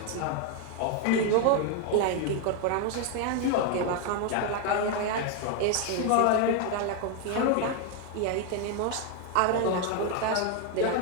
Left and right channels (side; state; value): both; different; correlation 0.01